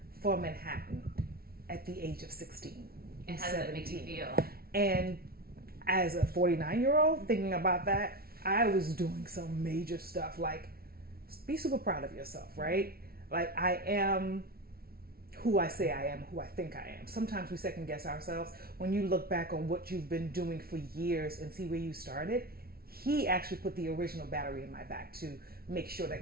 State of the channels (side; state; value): left; late; 0.44 ms